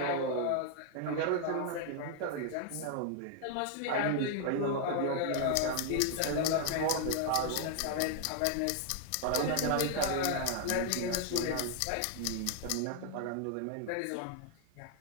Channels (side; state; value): both; different; correlation 0.00